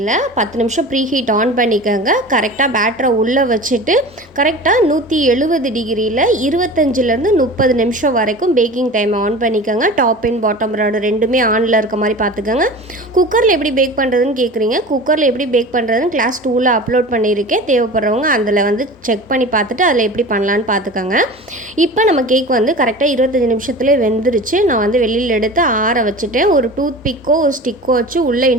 10 நிமிஷம் ப்ரீ ஹீட் ஆன் பண்ணிக்கோங்க. கரெக்டாக பேட்டரை உள்ளே வச்சுட்டு கரெக்டாக 170 டிகிரியில் 25லேருந்து 30 நிமிஷம் வரைக்கும் பேக்கிங் டைம் ஆன் பண்ணிக்கோங்க. டாப் அண்ட் பாட்டம் ராடு ரெண்டுமே ஆனில் இருக்க மாதிரி பார்த்துக்கோங்க. குக்கரில் எப்படி பேக் பண்ணுறதுன்னு கேட்குறீங்க. குக்கரில் எப்படி பேக் பண்ணுறதுன்னு கிளாஸ் 2ல் அப்லோட் பண்ணியிருக்கேன். தேவைப்படுறவங்க அதில் வந்து செக் பண்ணி பார்த்துட்டு அதில் எப்படி பண்ணலான்னு பார்த்துக்கோங்க. இப்போ நம்ம கேக் வந்து கரெக்டாக 25 நிமிஷத்துலேயே வெந்துருச்சு. நான் வந்து வெளியில் எடுத்து ஆற வச்சுட்டேன். ஒரு டூத் பிக்கோ ஒரு ஸ்டிக்கோ வச்சு உள்ளே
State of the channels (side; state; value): both; normal; correlation 0.36